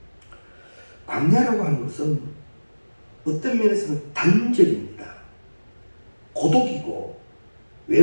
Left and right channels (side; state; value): both; inverted; correlation -1.00